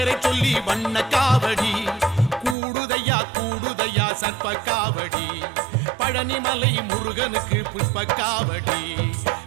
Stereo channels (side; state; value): left; drops out; at 2.6 s